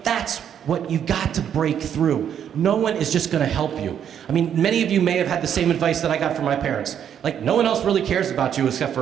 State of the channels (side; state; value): left; quieter; 9.0 dB